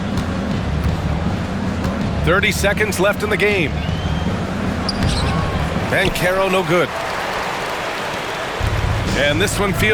30 seconds left in the game. Banchero no good. And this one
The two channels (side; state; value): both; identical; correlation 1.00